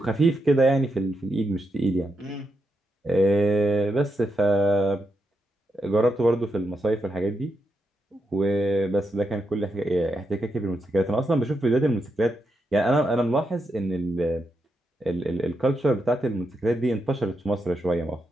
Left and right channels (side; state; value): both; normal; correlation 0.84